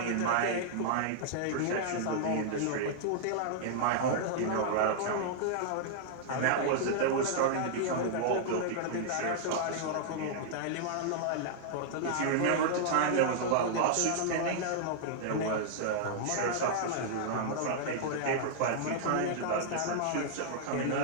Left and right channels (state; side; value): different; both; correlation -0.01